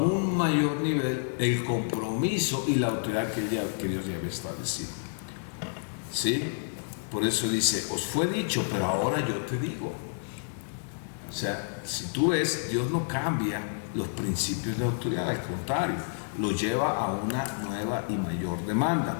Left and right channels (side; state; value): right; silent; digital silence